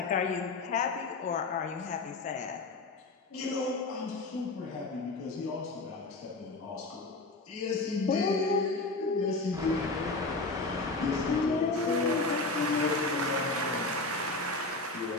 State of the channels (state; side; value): quieter; right; 3.3 dB